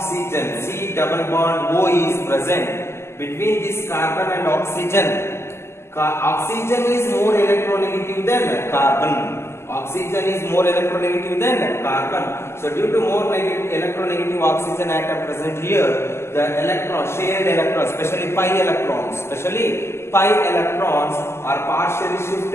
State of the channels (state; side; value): late; right; 0.12 ms